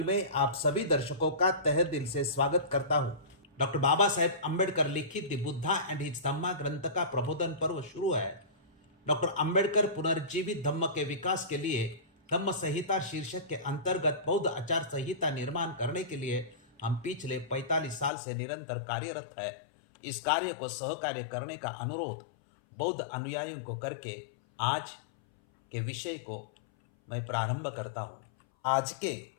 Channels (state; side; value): drops out; right; at 18.1 s